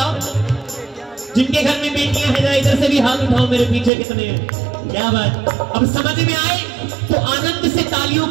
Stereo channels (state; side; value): drops out; left; at 3.9 s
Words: जिनके घर में बेटियां हैं जरा इधर से भी हाथ उठाओ, मेरे पीछे कितने हैं। क्या बात, अब समझ में आए तो आनंद से तालियों